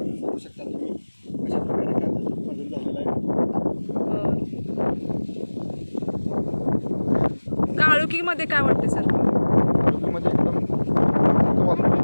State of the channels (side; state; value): both; inverted; correlation -1.00